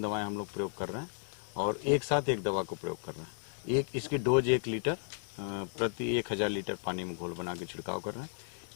दवाएं हम लोग प्रयोग कर रहे हैं और एक साथ एक दवा को प्रयोग कर रहे हैं। एक इसकी डोज 1 लीटर प्रति 1000 लीटर पानी में घोल बना के छिड़काव कर रहे हैं।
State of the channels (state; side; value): silent; right; digital silence